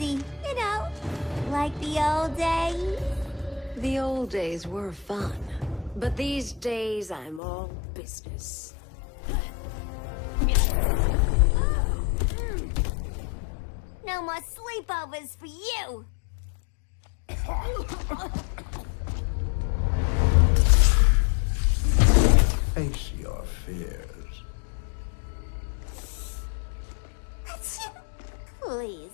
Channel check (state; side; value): drops out; right; at 7.4 s